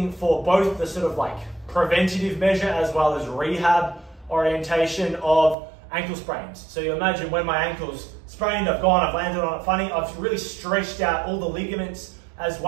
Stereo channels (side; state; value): left; drops out; at 5.6 s